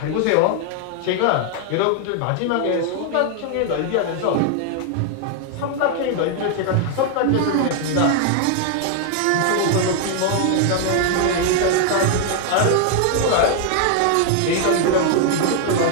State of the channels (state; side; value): different; both; correlation 0.00